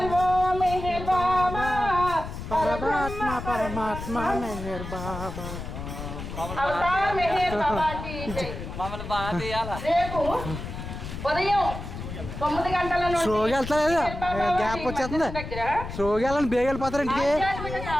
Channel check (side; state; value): left; noise; rumble, 8 dB below the sound